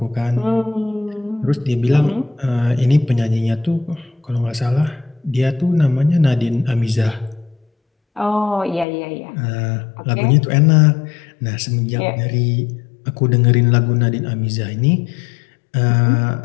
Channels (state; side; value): drops out; right; at 8.8 s